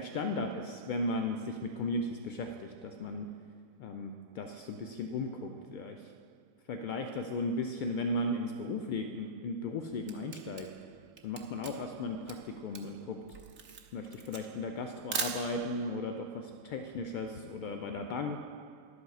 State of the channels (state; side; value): late; left; 3.9 ms